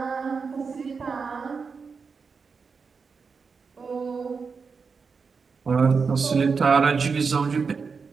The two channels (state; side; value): quieter; left; 5.2 dB